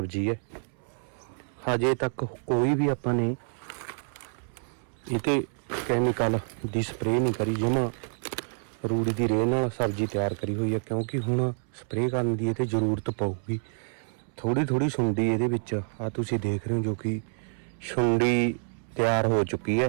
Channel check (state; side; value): silent; left; 59 dB below the other